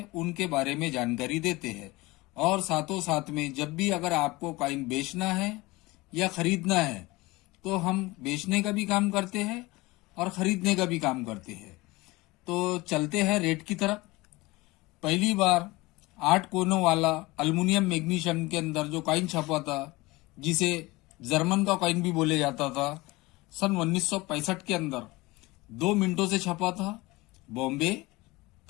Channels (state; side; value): quieter; right; 21.7 dB